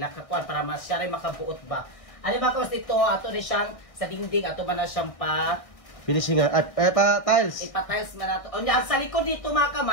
kakuan para mas siya rin makabuot ba. Ano mga kamad ito, ato rin siyang sa dingding, ato man na siyang Finishing at pa tiles. ipatiles man nato. O niya, sa likod dito mga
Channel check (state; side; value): late; right; 1.6 ms